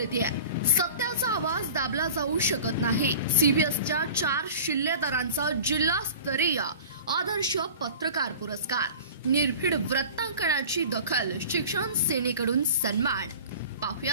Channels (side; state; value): both; inverted; correlation -0.39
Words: सत्याचा आवाज दाबला जाऊ शकत नाही. सीबीएसच्या 4 शिल्लेदारांचा जिल्हास्तरीय आदर्श पत्रकार पुरस्कार. निर्भीड वृत्तांकनाची दखल, शिक्षण सेनेकडून सन्मान.